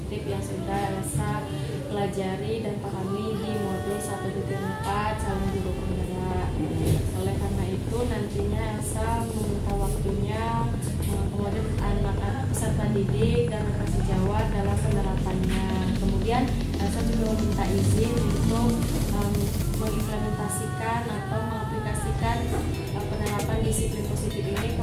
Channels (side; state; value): both; identical; correlation 1.00